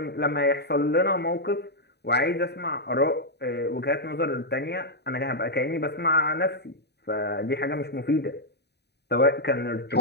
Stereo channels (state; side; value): late; right; 0.48 ms